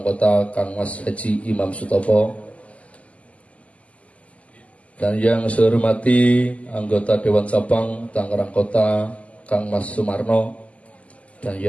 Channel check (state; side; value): late; right; 0.067 ms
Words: Kota, Kang Mas Haji Imam Sutopo. Dan yang saya hormati anggota Dewan Cabang Tangerang Kota, Kang Mas Sumarno. Dan